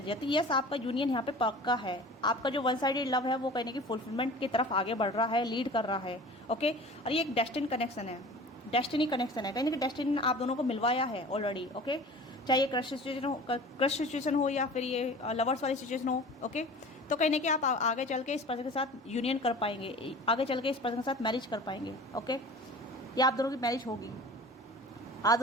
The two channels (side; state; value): both; normal; correlation 0.41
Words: है। तो यस, आपका यूनियन यहाँ पे पक्का है, आपका जो वन साइडेड लव है वो कहने की फुलफिलमेंट की तरफ आगे बढ़ रहा है, लीड कर रहा है। ओके, और ये एक डेस्टिनी कनेक्शन है, डेस्टिनी कनेक्शन है, कहीं ना कहीं डेस्टिनी ने आप दोनों को मिलवाया है ऑलरेडी। ओके, चाहे ये क्रश सिचुएशन हो या फिर ये लवर्स वाली सिचुएशन हो। ओके, तो कहीं ना कहीं आप आगे चल के इस पर्सन के साथ यूनियन कर पाएंगे, आगे चल के इस पर्सन के साथ मैरिज कर पाएंगे। ओके, या आप दोनों की मैरिज होगी, आप